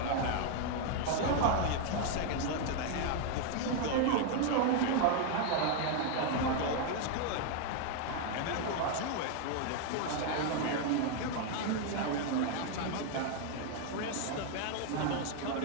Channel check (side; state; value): both; different; correlation 0.00